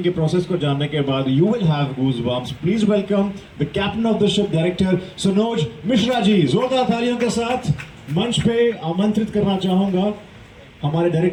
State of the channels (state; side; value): identical; both; correlation 1.00